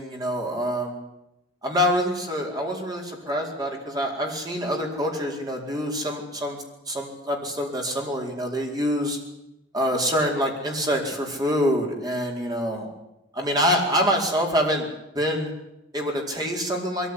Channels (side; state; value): both; normal; correlation 0.38